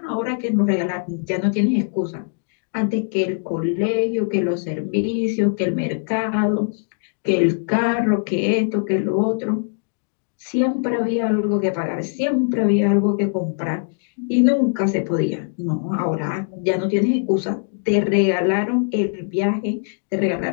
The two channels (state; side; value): silent; right; digital silence